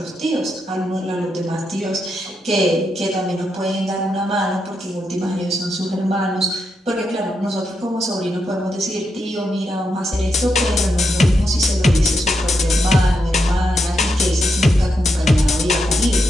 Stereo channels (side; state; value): both; normal; correlation 0.83